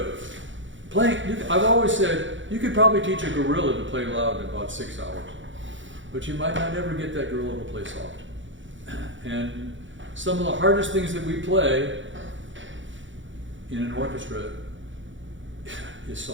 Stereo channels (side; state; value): left; late; 0.55 ms